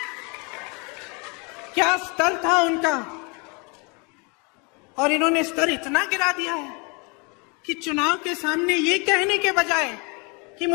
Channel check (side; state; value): right; quieter; 31.9 dB